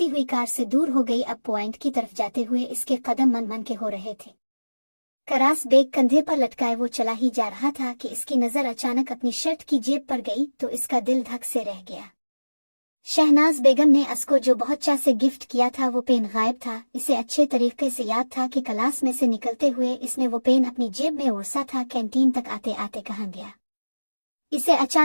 हुई कार से दूर हो गई। अब पॉइंट की तरफ जाते हुए इसके कदम मन मन के हो रहे थे। करास बेग कंधे पर लटकाए वो चला ही जा रहा था कि इसकी नजर अचानक अपनी शर्ट की जेब पर गई तो इसका दिल धक से रह गया। शहनाज बेगम ने असको जो बहुत चाह से गिफ्ट किया था वो पेन गायब था। इसे अच्छे तरीके से याद था कि क्लास में से निकलते हुए इसने वो पेन अपनी जेब में ओरसा था। कैंटीन तक आते आते कहाँ गया। इसे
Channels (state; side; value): inverted; both; correlation -1.00